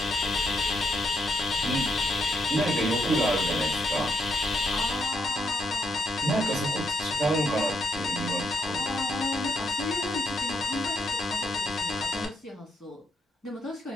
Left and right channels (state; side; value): normal; both; correlation 0.78